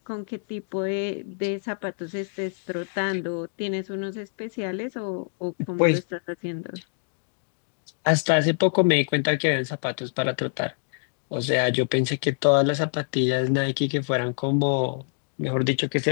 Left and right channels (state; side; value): silent; right; digital silence